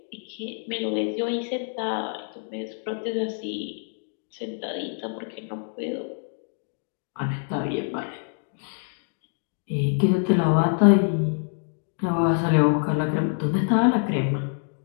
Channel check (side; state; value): right; silent; 56 dB below the other